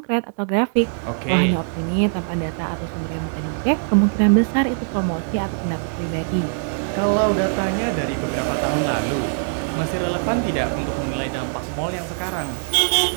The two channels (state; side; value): silent; left; digital silence